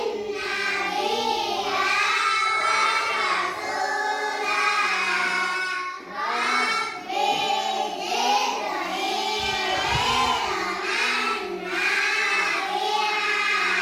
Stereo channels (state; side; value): identical; both; correlation 1.00